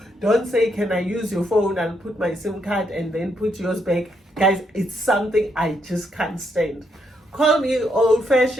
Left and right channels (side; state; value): both; normal; correlation 0.77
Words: Don't say, can I use your phone and put my SIM card and then put yours back? Guys, it's something I just can't stand. Call me